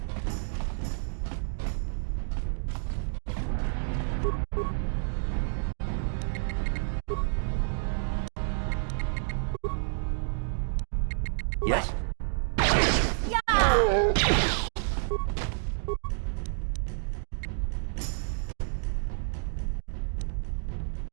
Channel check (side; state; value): left; silent; digital silence